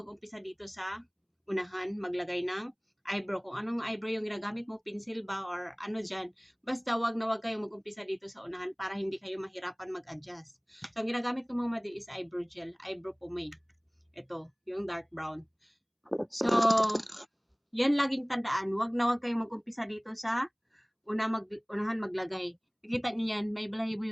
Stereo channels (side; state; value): both; identical; correlation 1.00